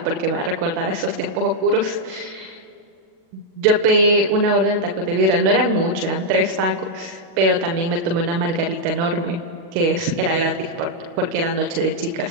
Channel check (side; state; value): left; late; 40 ms